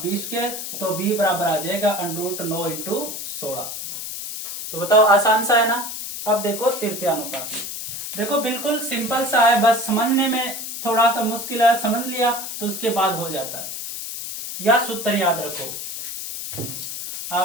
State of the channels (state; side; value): noise; left; hiss, 7 dB below the sound